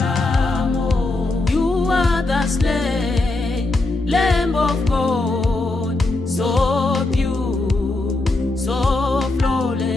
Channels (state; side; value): quieter; right; 3.0 dB